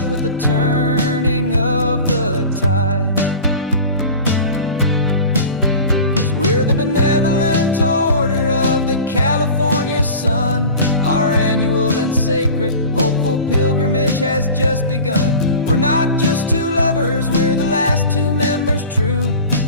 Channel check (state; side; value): inverted; both; correlation -0.37